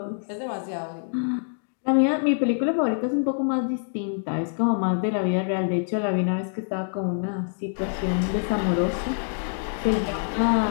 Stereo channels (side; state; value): right; silent; digital silence